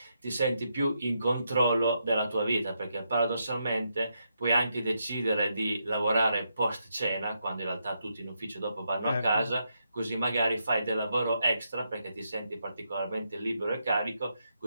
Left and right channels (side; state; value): both; inverted; correlation -0.81